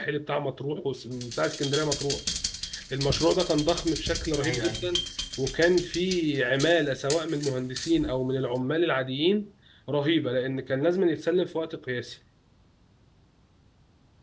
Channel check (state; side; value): identical; both; correlation 1.00